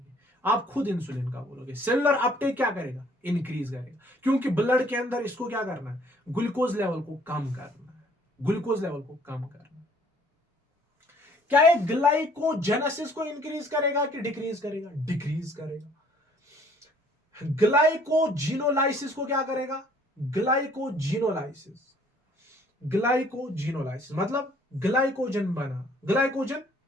आप खुद इंसुलिन का बोलोगे। सेल्यूलर अपटेक क्या करेगा? इंक्रीज करेगा, क्योंकि ब्लड के अंदर इसको क्या करना है? ग्लूकोज लेवल को कम करना है, ग्लूकोज लेवल को कम करना है। क्या ये ग्लाइकोजेनेसिस को इंक्रीज करेगा कि डिक्रीज करेगा? डिक्रीज करेगा। ग्लाइकोजिनोलाइसिस को क्या करेगा? ग्लाइकोजिनोलाइसिस, ग्लाइकोजिनोलाइसिस मतलब ग्लाइकोजन बना, ग्लाइकोजन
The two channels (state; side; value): normal; both; correlation 0.59